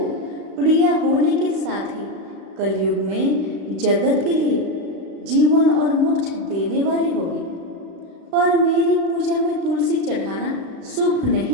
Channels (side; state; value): left; late; 35 ms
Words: प्रिय होने के साथ ही कलयुग में जगत के लिए जीवन और मोक्ष देने वाली होगी। पर मेरी पूजा में तुलसी चढ़ाना शुभ